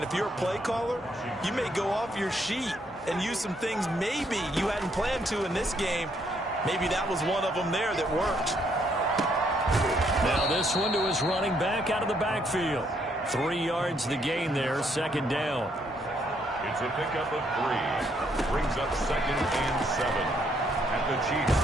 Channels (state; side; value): normal; both; correlation 0.71